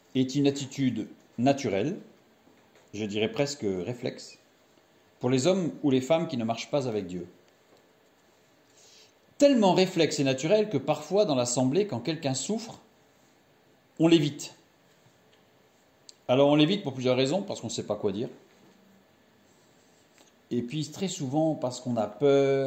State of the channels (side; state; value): both; identical; correlation 1.00